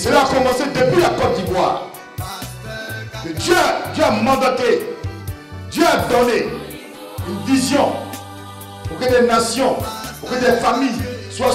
a commencé depuis la Côte d'Ivoire. Dieu a mandaté, Dieu a donné une vision pour que des nations, pour que des familles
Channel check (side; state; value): both; identical; correlation 1.00